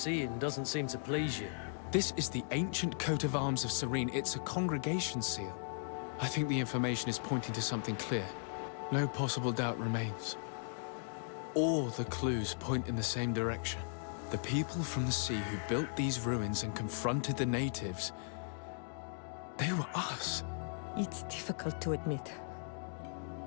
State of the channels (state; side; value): silent; right; digital silence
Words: doesn't seem to please you. This is the ancient coat of arms of Serene. It's a congregation seal. I think the information is pointing to something clear. No possible doubt remains. All the clues point in the same direction. The people from the sea who built these ruins and confronted the natives, they were us. It's difficult to admit.